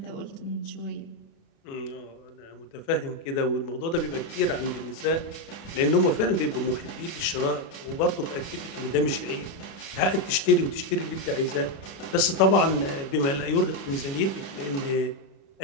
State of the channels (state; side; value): late; right; 36 ms